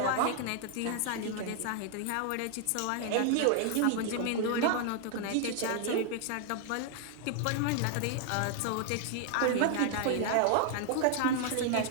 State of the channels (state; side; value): different; both; correlation 0.00